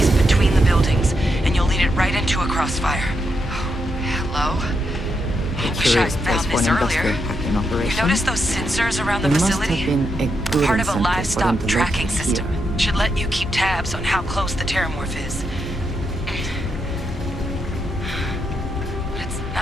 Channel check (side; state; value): both; normal; correlation 0.82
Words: between the buildings, and you'll lead it right into a crossfire. Oh, hello? I wish I'd found this earlier. You notice those sensors around the facility? Part of a livestock tracking system. Should let you keep tabs on how close the Terrormorph is. But it's